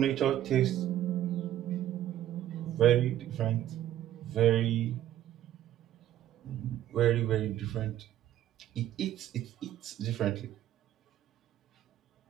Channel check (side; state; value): left; quieter; 12.3 dB